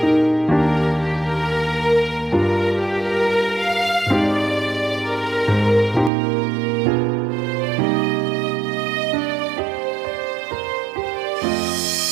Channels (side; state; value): left; drops out; at 6.1 s